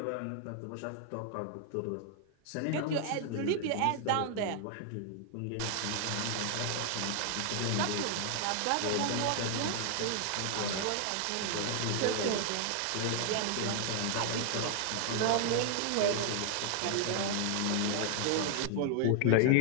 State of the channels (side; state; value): both; different; correlation 0.00